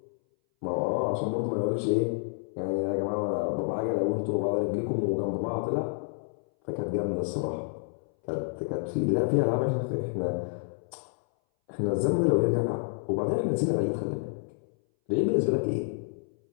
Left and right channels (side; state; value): right; silent; 59 dB below the other